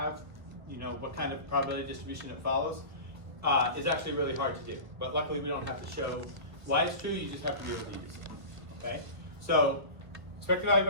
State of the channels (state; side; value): late; left; 1.4 ms